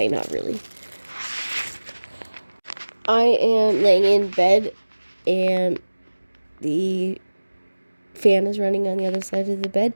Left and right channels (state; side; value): inverted; both; correlation -1.00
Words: not really. I am laying in bed and the fan is running on the other side of the bed.